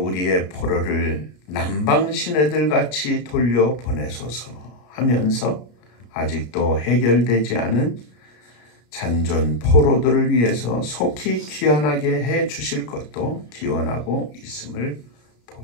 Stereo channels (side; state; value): right; late; 33 ms